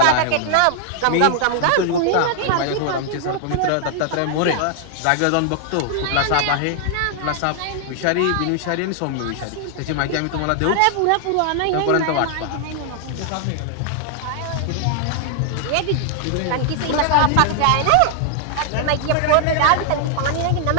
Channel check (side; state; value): both; different; correlation 0.00